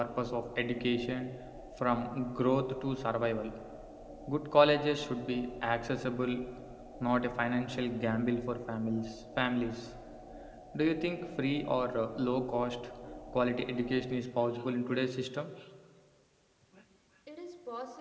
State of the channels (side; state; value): both; identical; correlation 1.00